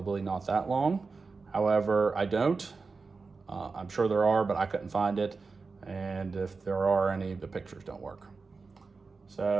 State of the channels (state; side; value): quieter; left; 4.3 dB